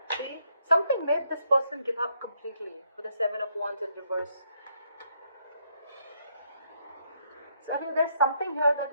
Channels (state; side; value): inverted; both; correlation -0.73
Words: See, something made this person give up completely with the Seven of Wands in reverse. So I think there's something here